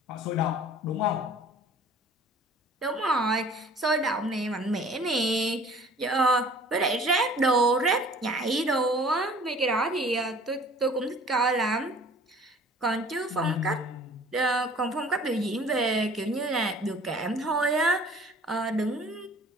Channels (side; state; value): both; normal; correlation 0.50